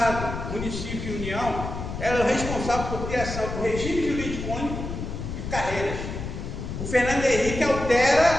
município e União, ela é responsável por criação do regime jurídico único e carreiras. O Fernando Henrique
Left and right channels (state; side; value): noise; left; rumble, 6 dB below the sound